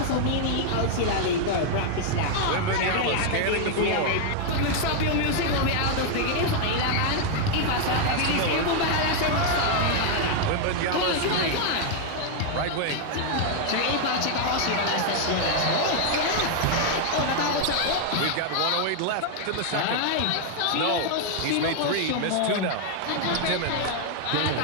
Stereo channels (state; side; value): different; both; correlation 0.00